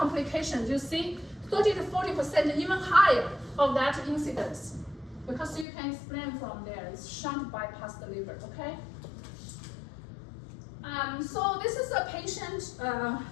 you see 30 to 40%, even higher of that incidence. Because you can explain from there, it's shunt bypass the liver, okay? So this is a patient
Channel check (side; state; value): right; drops out; at 5.7 s